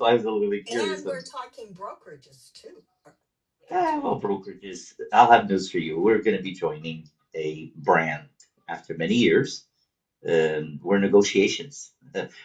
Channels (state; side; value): identical; both; correlation 1.00